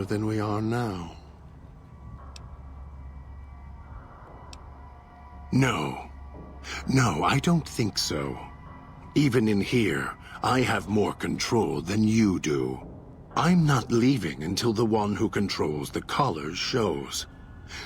than we are now. No, I don't think so. Even in here, I have more control than you do. I'm not leaving until the one who controls the collars shows.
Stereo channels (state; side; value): identical; both; correlation 1.00